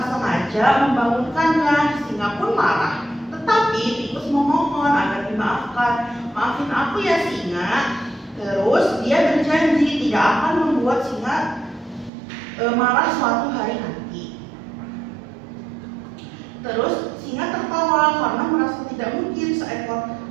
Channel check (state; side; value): drops out; left; at 12.1 s